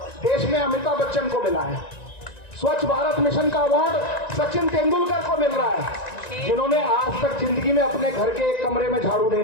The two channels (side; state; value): right; late; 1.9 ms